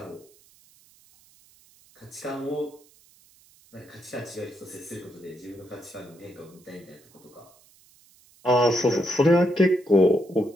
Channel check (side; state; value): right; noise; hiss, 29 dB below the sound